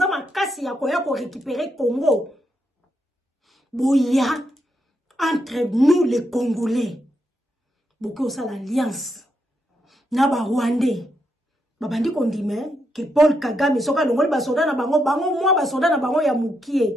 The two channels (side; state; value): both; normal; correlation 0.81